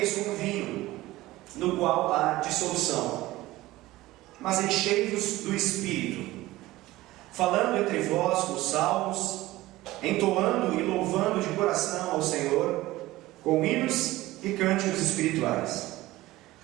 com vinho, no qual há dissolução, mas enchei-vos do Espírito, falando entre vós com salmos, entoando e louvando de coração ao Senhor, com hinos e cânticos espirituais,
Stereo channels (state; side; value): quieter; left; 17.7 dB